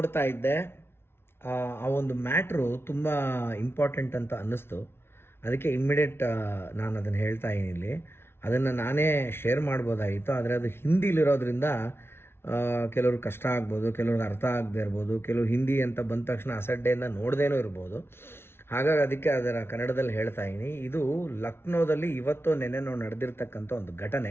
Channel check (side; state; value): right; late; 0.12 ms